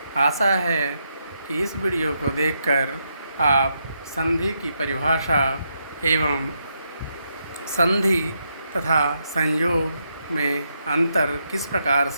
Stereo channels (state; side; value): inverted; both; correlation -0.80